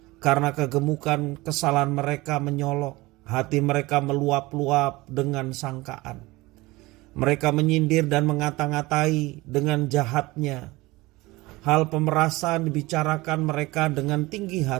Karena kegemukan kesalahan mereka menyolok, hati mereka meluap-luap dengan sangkaan. Mereka menyindir dan mengata-ngatai dengan jahatnya. Hal pemerasan dibicarakan mereka dengan tinggi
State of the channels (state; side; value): quieter; left; 21.1 dB